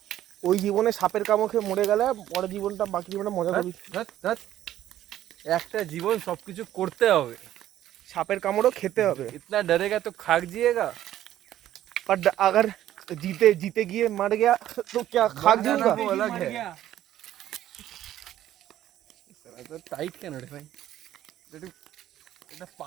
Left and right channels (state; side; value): quieter; left; 12.6 dB